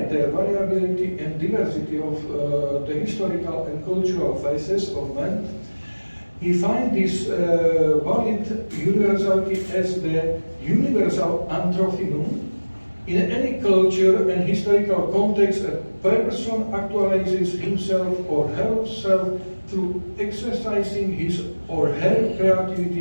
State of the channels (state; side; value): inverted; both; correlation -1.00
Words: the variability and diversity of the historical and cultural phases of man, he finds this valid universality as the universal anthrophinum. In any culture and historical context, a person actualizes himself or herself through exercising his or her